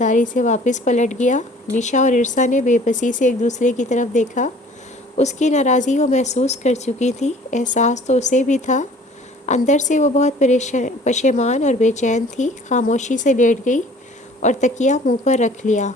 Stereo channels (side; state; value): both; normal; correlation 0.51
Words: سے واپس پلٹ گیا۔ نشا اور عرصا نے بے بسی سے ایک دوسرے کی طرف دیکھا۔ اس کی ناراضی وہ محسوس کر چکی تھی، احساس تو اسے بھی تھا۔ اندر سے وہ بہت پشیمان اور بے چین تھی۔ خاموشی سے لیٹ گئی اور تکیہ منہ پر رکھ لیا۔